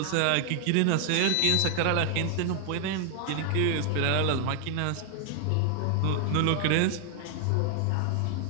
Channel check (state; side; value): different; both; correlation 0.00